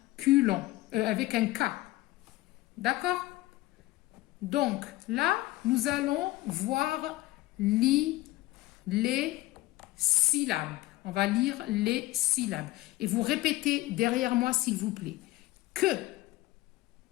culon. Avec un K. D'accord? Donc, là, nous allons voir les syllabes. On va lire les syllabes. Et vous répétez derrière moi, s'il vous plaît. Que,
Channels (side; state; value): right; quieter; 18.0 dB